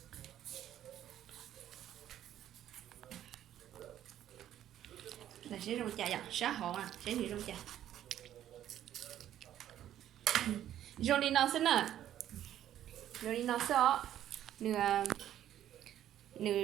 là sẽ rong chả vậy xã hội sẽ đi rong chả rong đi nó sẽ nè rồi đi nó sẽ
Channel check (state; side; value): quieter; left; 11.5 dB